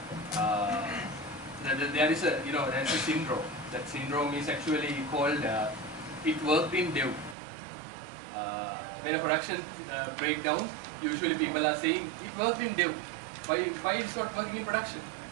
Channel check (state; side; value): drops out; left; at 7.4 s